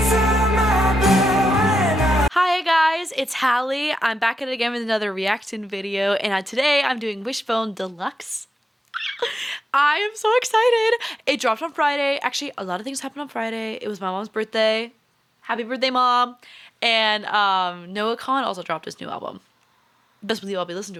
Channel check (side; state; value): both; normal; correlation 0.88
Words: Hi guys, it's Hallie. I'm back at it again with another reaction video, and today I'm doing Wishbone Deluxe. I am so excited. It dropped on Friday. Actually, a lot of things happened on Friday. It was my mom's birthday. Happy birthday, Mom. And Noah Khan also dropped his new album. Best believe I'll be listening